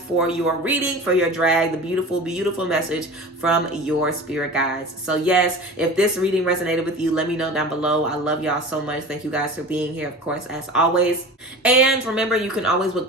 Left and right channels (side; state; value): both; normal; correlation 0.35